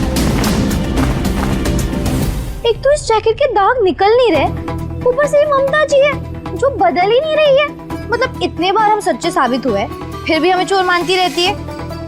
इस जैकेट के दाग निकल नहीं रहे, ऊपर से ममता जी है जो बदल ही नहीं रही है। मतलब इतने बार हम सच्चे साबित हुए, फिर भी हमें चोर मानती रहती है।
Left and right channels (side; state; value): both; identical; correlation 1.00